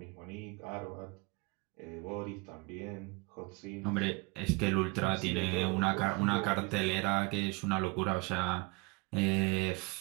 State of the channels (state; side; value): quieter; left; 26.5 dB